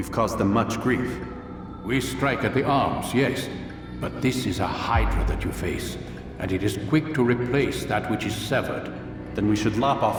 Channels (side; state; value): both; identical; correlation 1.00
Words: caused them much grief. We strike at the arms, yes. But this is a hydra that you face, and it is quick to replace that which is severed. Then we should lop off